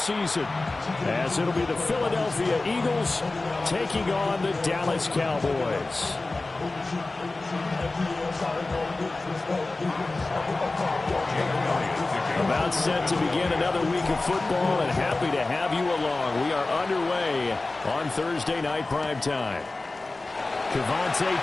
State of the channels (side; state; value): right; quieter; 3.2 dB